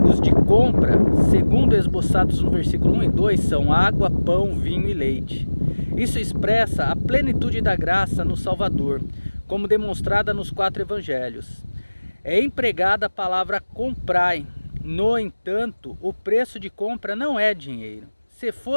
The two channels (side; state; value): both; inverted; correlation -1.00